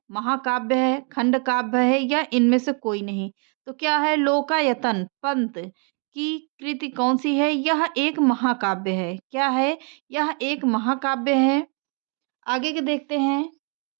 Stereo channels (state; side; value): quieter; left; 39.3 dB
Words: महाकाव्य है, खंड काव्य है या इनमें से कोई नहीं। तो क्या है? लोकायतन पंत की कृति कौन सी है? यह एक महाकाव्य है। क्या है? यह एक महाकाव्य है। आगे के देखते हैं।